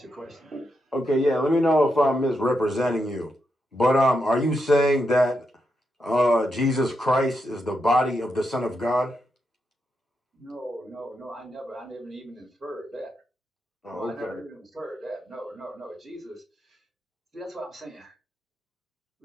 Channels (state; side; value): normal; both; correlation 0.84